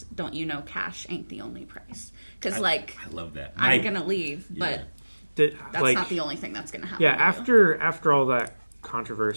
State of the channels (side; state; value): both; inverted; correlation -1.00